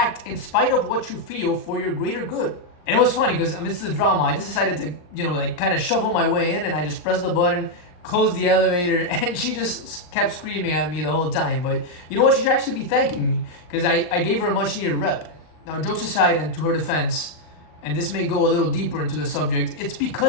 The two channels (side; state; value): right; late; 39 ms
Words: in spite of what you feel for your greater good. And it was funny because amidst the drama, I just decided to, kind of shovel my way in and I just pressed the button, closed the elevator, and she just kept screaming at me the whole time. But you know what? She should actually be thanking me because I gave her a much needed rep. Now, jokes aside and to her defense, and this may go a little deeper into the subject, it's